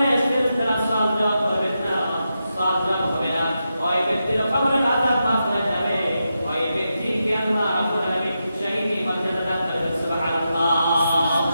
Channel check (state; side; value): inverted; both; correlation -0.87